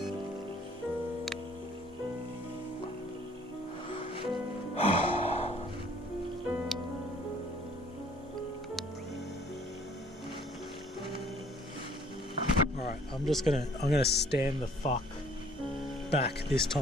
Alright, I'm gonna stand the fuck back this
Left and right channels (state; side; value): normal; both; correlation 0.57